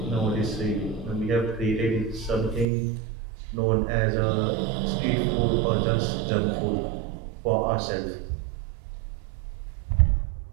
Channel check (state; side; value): drops out; left; at 2.7 s